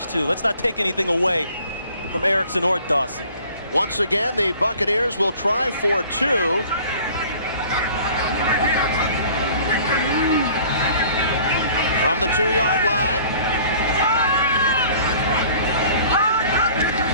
too. Let's not take anything away from Erickson or Dawsey. Once again, the Buccaneers will try for 2. From the 2-yard line.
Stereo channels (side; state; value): both; inverted; correlation -0.50